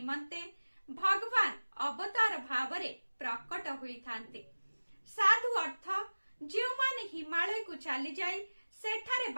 भगवान अवतार भावरे प्रकट हुई थांती। साधु अर्थ जो माने हिमालय को चली जाई सेठारे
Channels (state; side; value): inverted; both; correlation -1.00